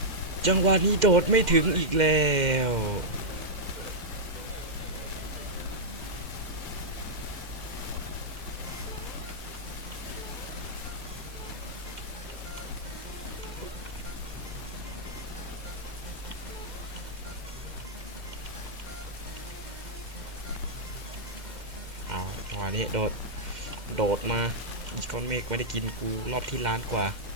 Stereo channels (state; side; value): late; left; 2.1 ms